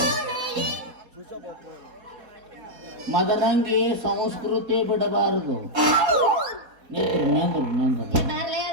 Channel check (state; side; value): late; left; 4.2 ms